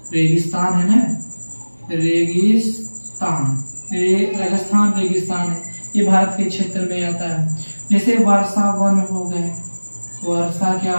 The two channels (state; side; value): inverted; both; correlation -1.00